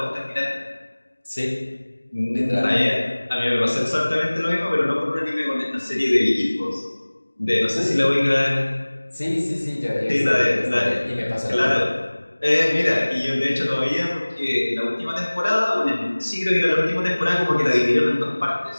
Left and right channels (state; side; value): inverted; both; correlation -1.00